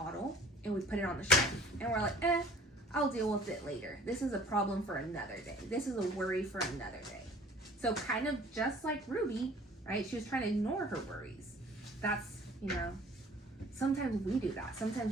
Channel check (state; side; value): normal; both; correlation 0.51